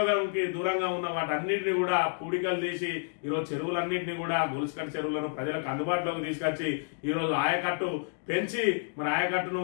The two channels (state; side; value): silent; right; digital silence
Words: దూరంగా ఉన్న వాటన్నింటినీ కూడా పూడికలు తీసి ఈరోజు చెరువులన్నింటినీ కూడా గొలుసుకట్టు చెరువులను ప్రజలకు అందుబాటులోకి తీసుకొచ్చి ఈరోజు ఆయకట్టు పెంచి మరి ఆయకట్టును